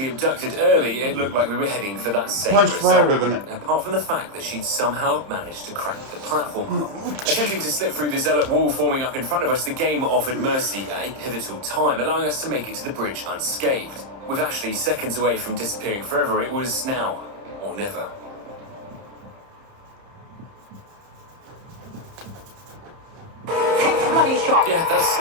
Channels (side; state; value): left; late; 30 ms